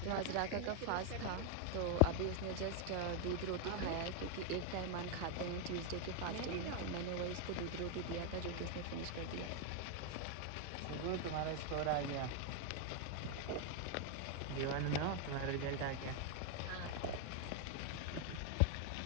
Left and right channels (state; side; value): different; both; correlation 0.00